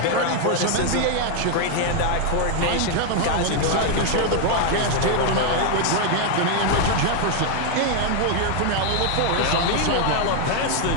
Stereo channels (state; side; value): different; both; correlation 0.01